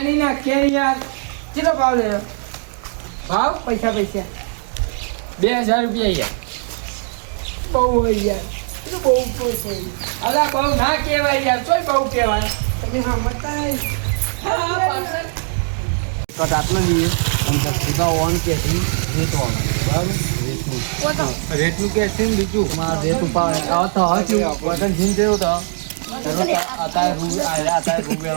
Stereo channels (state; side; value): silent; left; 58 dB below the other